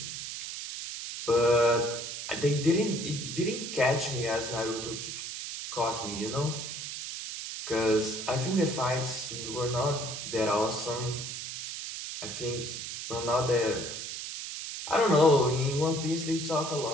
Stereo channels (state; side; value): noise; right; hiss, 7 dB below the sound